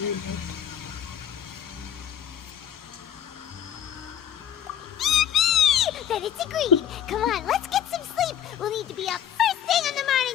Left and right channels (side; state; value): right; quieter; 10.0 dB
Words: out. Then it's agreed. Come on, let's get some sleep. We'll need to be up first thing in the